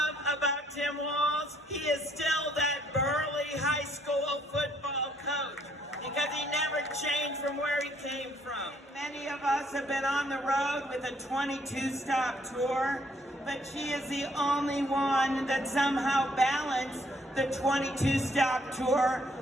about Tim Walz? He is still that burly high school football coach because he never changed from where he came from. Many of us have been on the road with a 22-stop tour, but she is the only one that somehow balanced the 22-stop tour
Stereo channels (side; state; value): both; normal; correlation 0.67